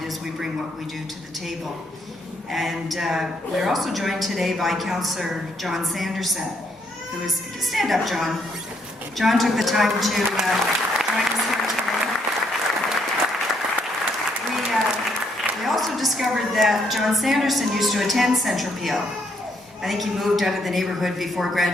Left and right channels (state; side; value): normal; both; correlation 0.72